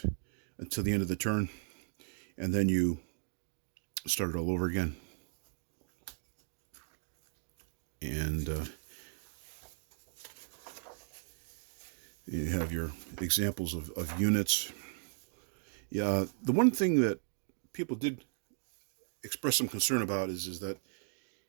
until the end of the turn, and then you start it all over again. And you have your examples of units. Yeah, the one thing that people did express some concern about is that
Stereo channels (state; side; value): silent; left; digital silence